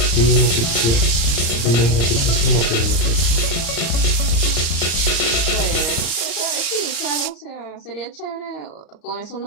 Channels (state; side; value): late; right; 34 ms